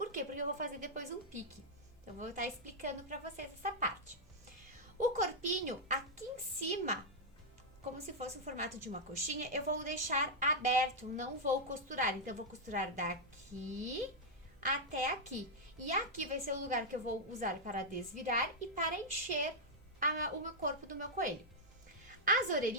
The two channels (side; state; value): right; noise; hum, 27 dB below the sound